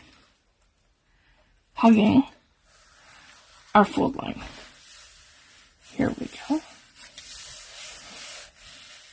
hugging our fold line. Here we go.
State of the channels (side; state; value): both; identical; correlation 1.00